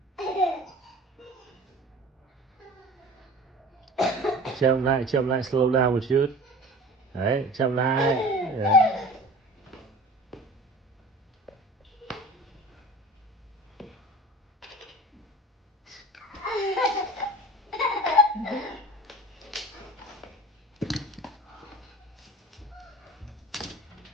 Chậm lại, slow down một chút. Đấy, chậm lại. Đấy.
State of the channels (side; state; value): both; normal; correlation 0.39